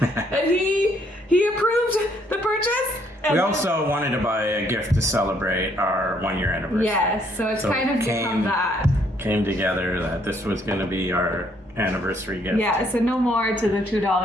And he approved the purchase. We also wanted to buy a gift to celebrate our 1-year anniversary. Yes, so it's kind of become that. Came together that this was going to be our anniversary gift. Yeah, so no more to the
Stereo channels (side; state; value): both; normal; correlation 0.68